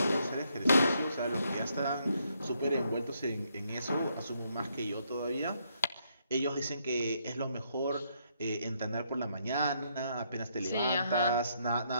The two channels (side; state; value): both; inverted; correlation -0.74